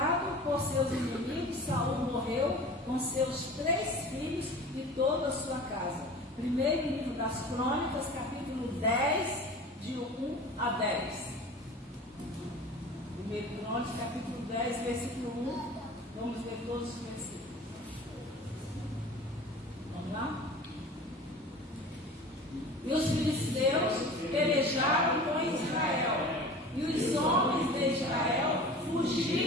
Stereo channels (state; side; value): normal; both; correlation 0.39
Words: por seus inimigos, Saul morreu com seus 3 filhos e toda a sua casa. Primeiro livro das Crônicas, capítulo 10, de 1 a 10. Primeiro Crônicas, capítulo 10, versículo 1. Vamos ler todos os versículos. Vamos lá? E os filisteus pelejaram com Israel, e os homens de Israel